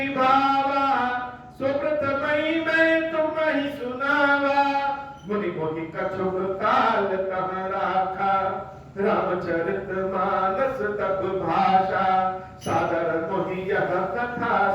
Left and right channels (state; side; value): identical; both; correlation 1.00